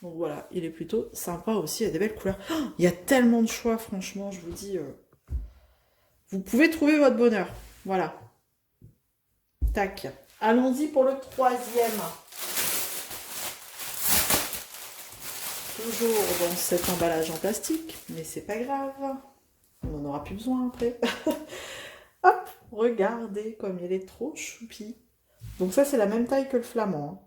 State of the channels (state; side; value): identical; both; correlation 1.00